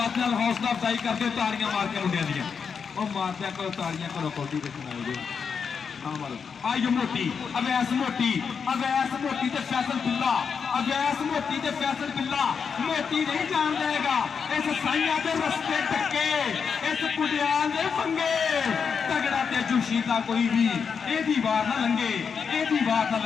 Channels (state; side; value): quieter; right; 6.2 dB